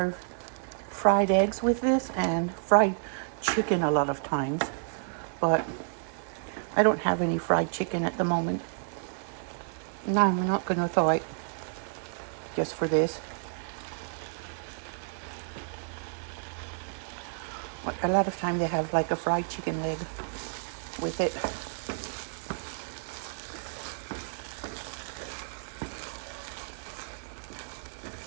fried eggs with this and fried chicken a lot of times, but I don't have any fried chicken at the moment. No, I'm not going to thaw it just for this. But a lot of time they have like a fried chicken leg with it.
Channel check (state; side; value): silent; left; digital silence